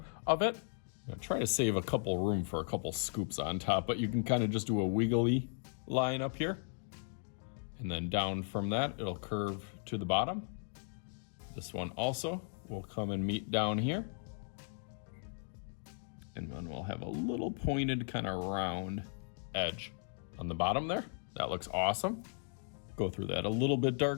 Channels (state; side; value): silent; right; 53 dB below the other